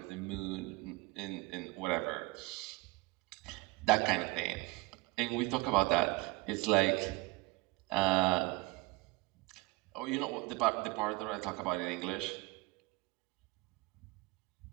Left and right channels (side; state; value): left; quieter; 22.4 dB